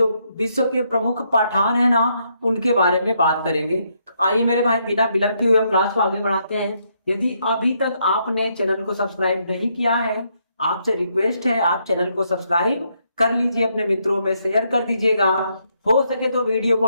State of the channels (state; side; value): inverted; both; correlation -0.76